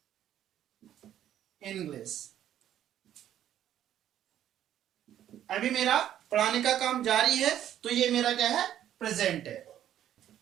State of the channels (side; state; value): left; quieter; 11.2 dB